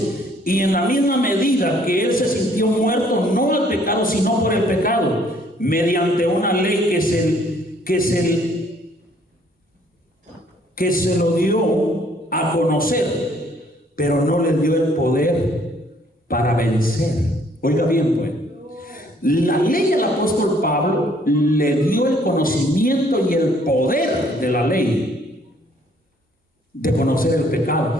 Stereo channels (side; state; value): both; normal; correlation 0.62